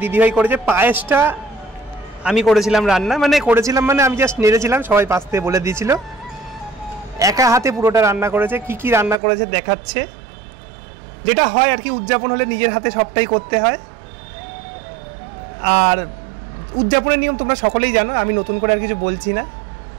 দিদিভাই করেছে। পায়েসটা আমি করেছিলাম রান্না, মানে আমি জাস্ট নেড়েছিলাম, সবাই পাশ থেকে বলে দিয়েছিল। একা হাতে পুরোটা রান্না করেছে। কি কি রান্না করেছে দেখাচ্ছে। যেটা হয় আর কি, উদযাপন হলে নিজের হাতে সবটাই করতে হয়। আর উদযাপনের নিয়ম তোমরা সকলেই জানো, আমি নতুন করে আর কিছু বলছি না।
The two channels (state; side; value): drops out; left; at 9.2 s